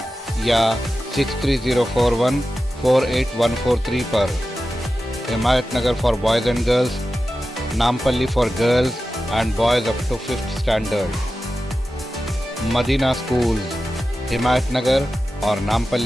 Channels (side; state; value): both; normal; correlation 0.93